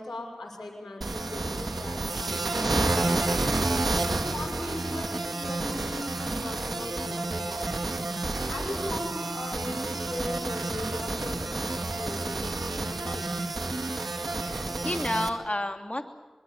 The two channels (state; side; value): normal; both; correlation 0.90